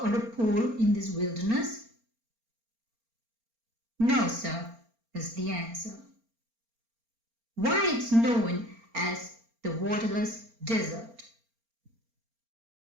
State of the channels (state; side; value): late; left; 4.4 ms